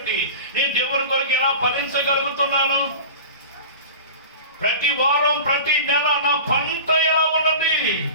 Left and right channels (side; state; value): both; inverted; correlation -0.34